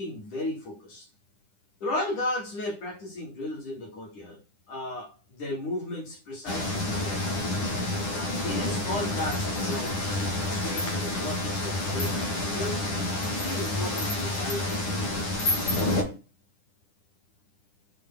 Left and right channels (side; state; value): right; late; 10 ms